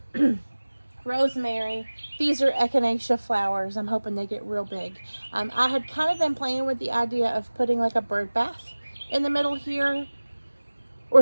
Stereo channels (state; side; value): inverted; both; correlation -1.00